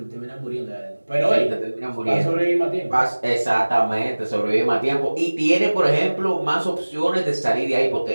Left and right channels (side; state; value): both; inverted; correlation -1.00